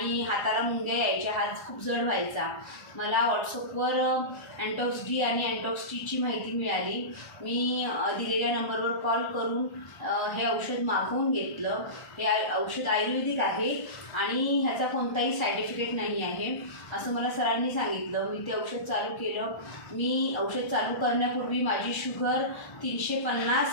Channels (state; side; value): late; right; 1.3 ms